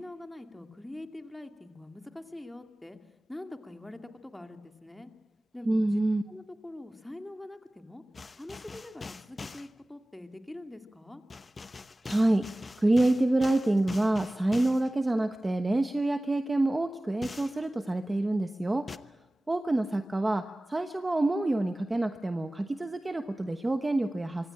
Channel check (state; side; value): normal; both; correlation 0.98